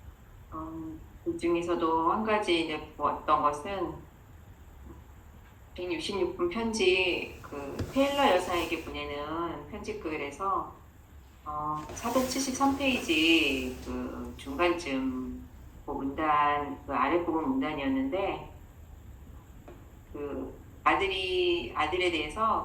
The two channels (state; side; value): identical; both; correlation 1.00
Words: 그 중에서도 한 가지 이제 보았던 것은 166분 편지, 그 테일러 여사에게 보내는 편지글에서 473페이지 그 중간쯤 그 문단, 그 아랫부분 문단이었는데, 그 아들에